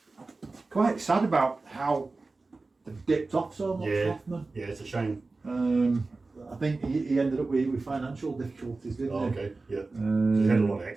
quite sad about how they've dipped off so much, Hoffman. Yeah, it's a shame. I think he ended up with financial difficulties, didn't he? Okay, yeah. He's had a lot of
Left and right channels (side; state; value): left; quieter; 3.6 dB